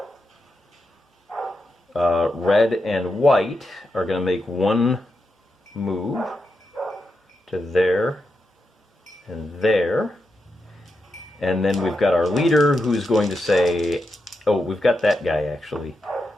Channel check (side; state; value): both; normal; correlation 0.86